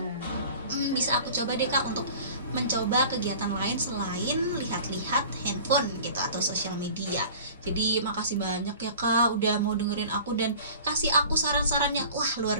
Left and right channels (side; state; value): both; inverted; correlation -0.43